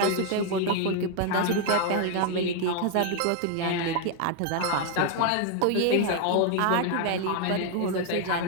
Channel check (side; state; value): both; different; correlation 0.01